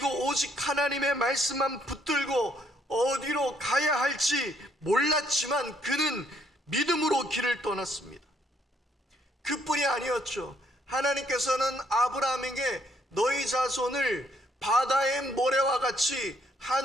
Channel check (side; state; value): both; normal; correlation 0.69